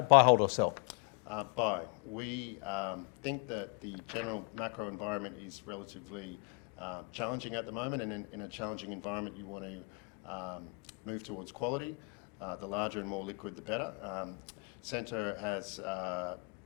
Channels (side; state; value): right; quieter; 33.6 dB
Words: Buy, hold or sell? Buy. We think that the general macro environment is relatively challenging at the moment, and in a challenging environment you want to move towards quality. The larger and more liquid, the better. SCENTRE has